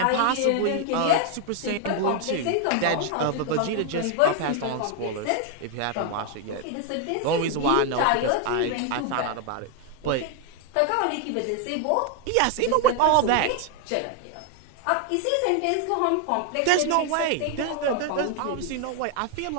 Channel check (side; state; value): both; different; correlation 0.00